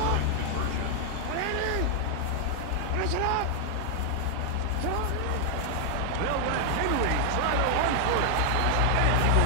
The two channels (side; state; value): both; different; correlation 0.00